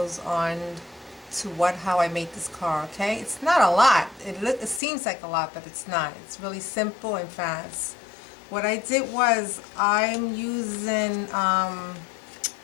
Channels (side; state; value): right; drops out; at 4.8 s